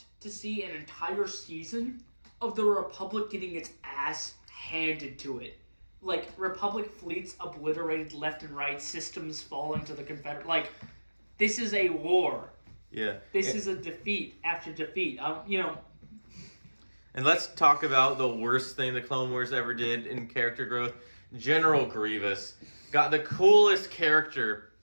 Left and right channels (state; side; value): inverted; both; correlation -1.00